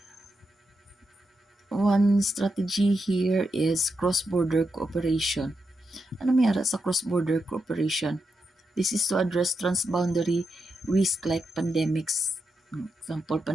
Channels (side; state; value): both; normal; correlation 0.85